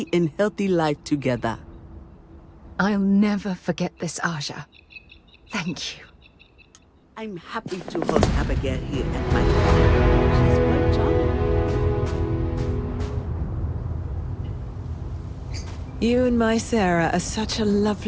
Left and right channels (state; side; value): identical; both; correlation 1.00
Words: and healthy life together. I'll never forget this, Aja. Thank you. I'm happy to host Abigail here at my home. She's quite charming. You and my Sarah are such a